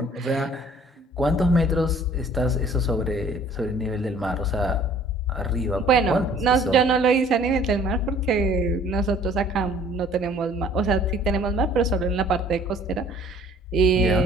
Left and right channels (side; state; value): both; normal; correlation 0.54